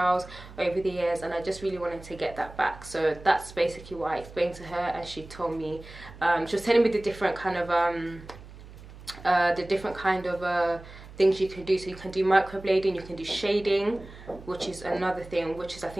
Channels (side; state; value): right; noise; hum, 17 dB below the sound